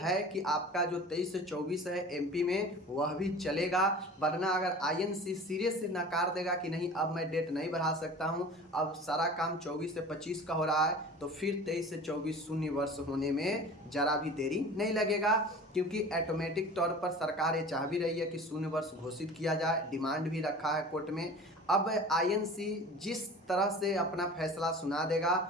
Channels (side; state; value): both; normal; correlation 0.39